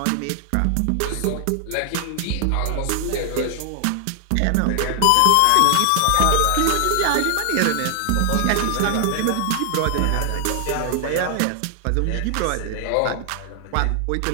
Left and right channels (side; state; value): both; different; correlation 0.00